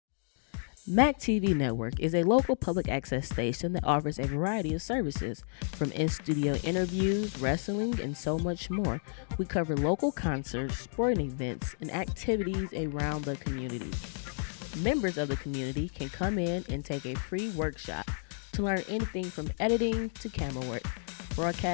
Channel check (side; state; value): right; silent; 57 dB below the other